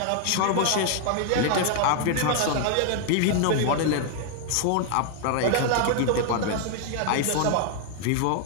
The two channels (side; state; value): both; different; correlation 0.00